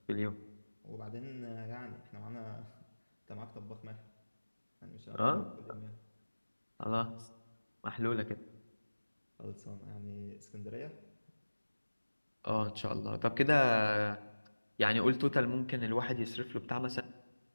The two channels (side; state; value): both; inverted; correlation -1.00